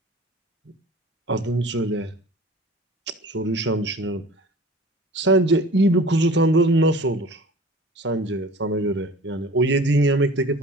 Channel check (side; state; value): both; normal; correlation 0.43